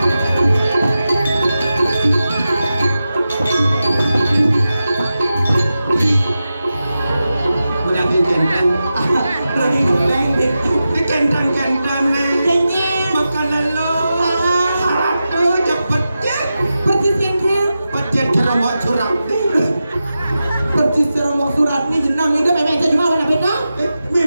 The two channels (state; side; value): inverted; both; correlation -0.92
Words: Kentang-kentang nih makanan lo harap tuh cepet pecet cerobok surat percis cerobok surat nih jenang ini memang aja cuma warna beda